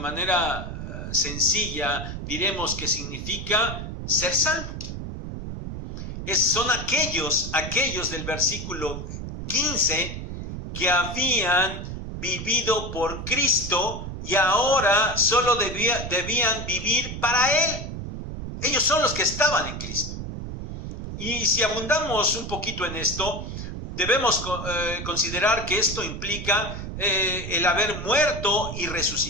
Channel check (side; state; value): right; noise; rumble, 7 dB below the sound